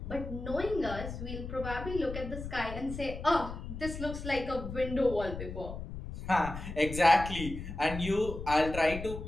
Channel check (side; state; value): left; noise; rumble, 8 dB below the sound